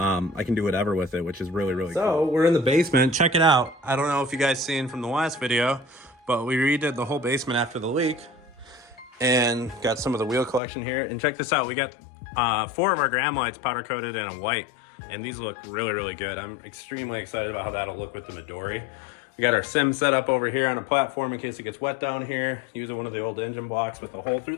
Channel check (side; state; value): right; drops out; at 10.6 s